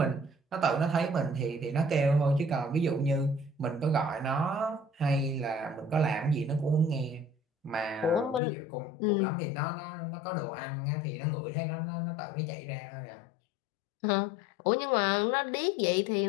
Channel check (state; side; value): drops out; right; at 8.4 s